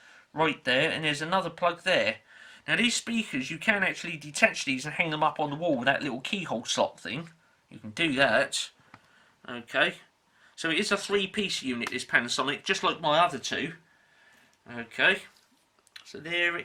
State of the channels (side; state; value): both; identical; correlation 1.00